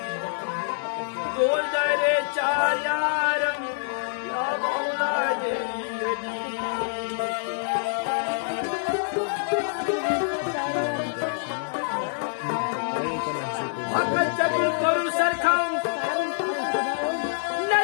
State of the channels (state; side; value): silent; right; digital silence